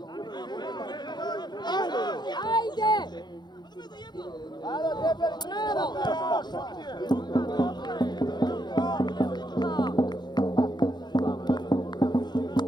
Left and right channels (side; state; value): right; late; 0.21 ms